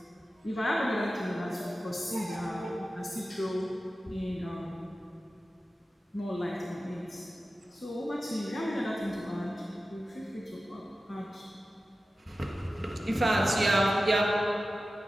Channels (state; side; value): normal; both; correlation 0.94